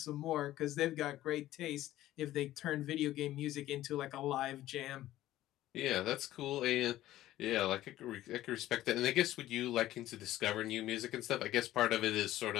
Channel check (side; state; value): right; quieter; 14.6 dB